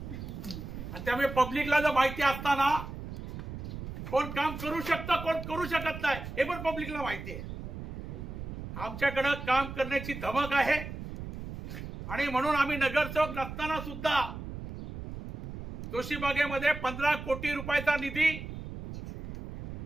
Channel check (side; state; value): right; noise; rumble, 8 dB below the sound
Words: त्यामुळे पब्लिकला जर माहिती असताना कोण काम करू शकतं कोण करू शकत नाही हे पण पब्लिकला माहिती आहे। आमच्याकडे काम करण्याची धमक आहे आणि म्हणून आम्ही नगरसेवक नसताना सुद्धा जोशीबागेमध्ये 15 कोटी रुपयाचा निधी